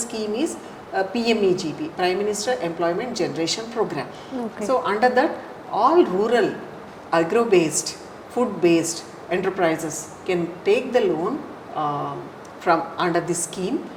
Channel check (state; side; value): identical; both; correlation 1.00